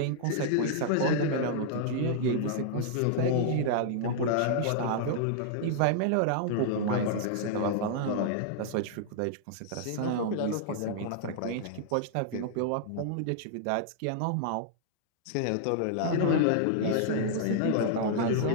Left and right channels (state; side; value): different; both; correlation -0.01